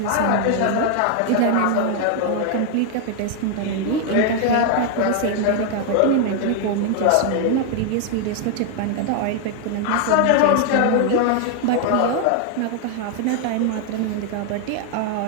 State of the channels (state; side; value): different; both; correlation 0.00